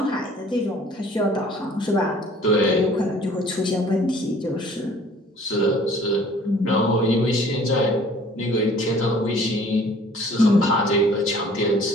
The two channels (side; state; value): both; normal; correlation 0.53